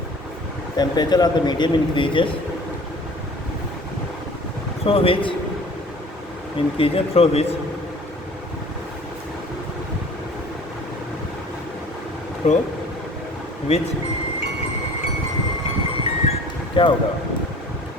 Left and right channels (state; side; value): normal; both; correlation 0.47